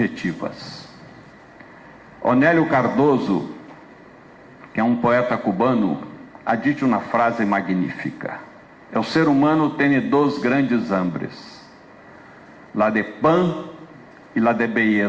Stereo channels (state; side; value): identical; both; correlation 1.00